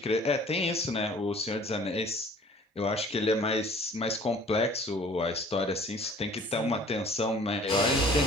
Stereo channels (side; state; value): both; normal; correlation 0.51